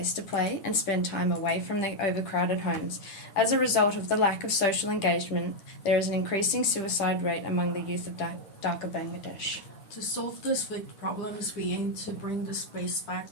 to play and spend time away from their overcrowded homes. As a result of the lack of social engagement, there is an increasing suicide rate among the youth of Dhaka, Bangladesh. To solve these big problems, we aim to bring the space back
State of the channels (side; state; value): right; late; 10 ms